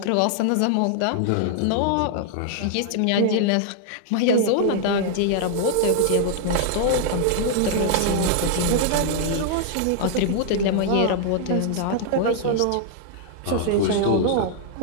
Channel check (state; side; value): different; both; correlation -0.01